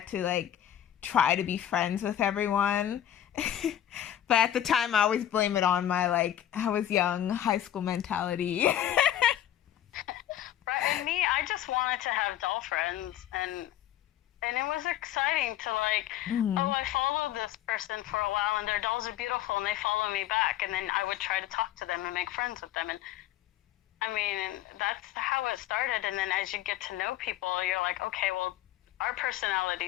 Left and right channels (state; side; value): quieter; right; 11.8 dB